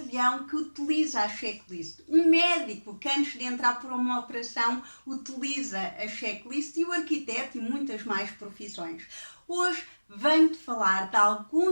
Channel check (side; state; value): both; inverted; correlation -1.00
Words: que utiliza a checklist, um médico que antes de entrar por uma operação utiliza a checklist e o arquiteto e muitas mais profissões. Hoje venho-te falar de